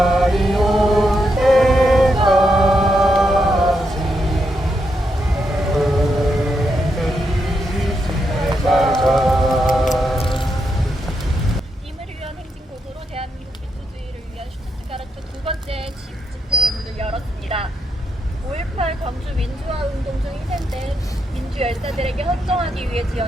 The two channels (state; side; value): normal; both; correlation 0.82